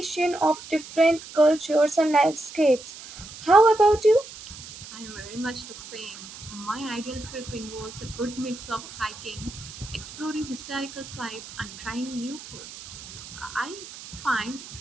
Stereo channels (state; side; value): noise; right; hiss, 15 dB below the sound